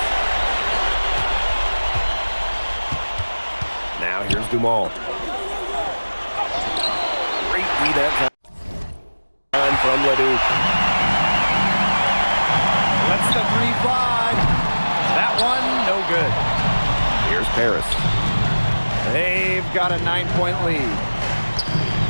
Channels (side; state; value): both; inverted; correlation -1.00